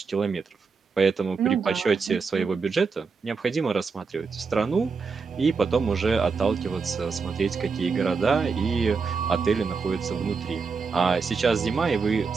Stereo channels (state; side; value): quieter; left; 5.0 dB